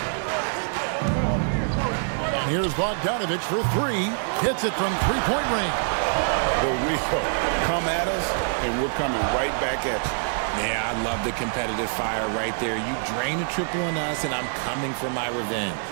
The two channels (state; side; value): silent; left; digital silence